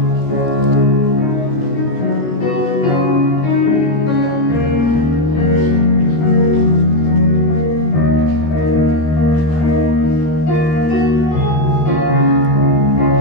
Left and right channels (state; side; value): late; right; 14 ms